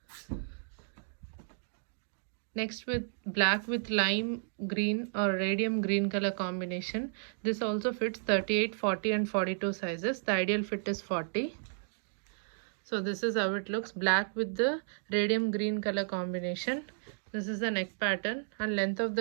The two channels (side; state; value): left; silent; digital silence